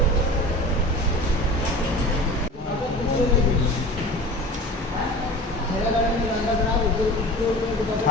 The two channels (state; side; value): normal; both; correlation 0.36